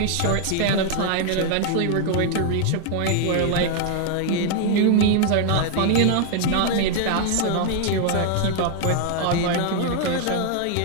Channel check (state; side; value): different; both; correlation 0.00